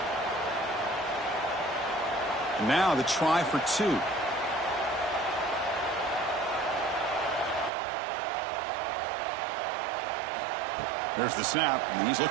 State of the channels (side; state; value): left; drops out; at 7.7 s